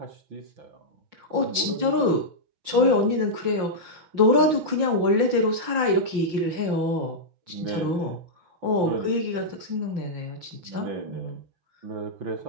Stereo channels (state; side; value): late; left; 5.6 ms